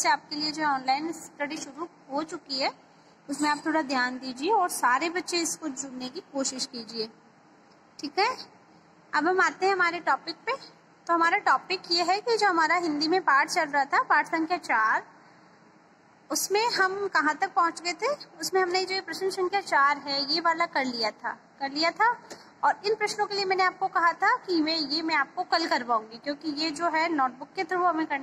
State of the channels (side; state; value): both; identical; correlation 1.00